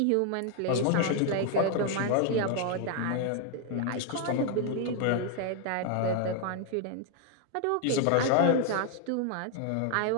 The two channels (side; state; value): both; different; correlation 0.00